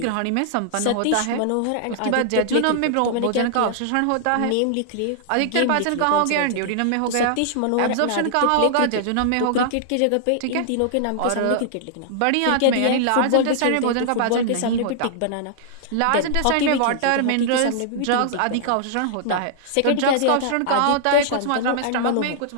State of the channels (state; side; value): different; both; correlation -0.01